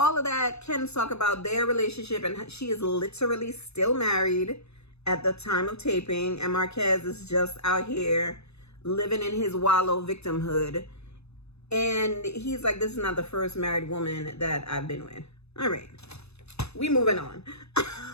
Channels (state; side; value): late; right; 0.79 ms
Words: of that, Ken's talk about their relationship, and she is literally still married at the time of taping. And Marquez is just out here living in his wallow victimhood. And he's like, this is not the first married woman that I've been with. All right. We moving on.